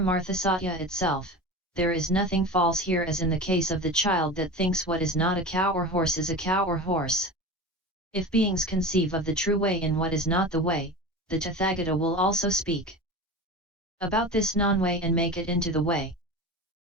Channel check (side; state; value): both; normal; correlation 0.31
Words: Satya itself, there is nothing false here as in the case of the child that thinks what is not a cow or horse is a cow or horse. If beings conceive of the true way in what is not the way, the Tathagata will also speak about this non-way and make it into the way.